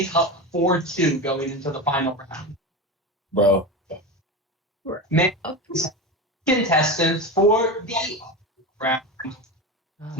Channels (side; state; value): both; normal; correlation 0.23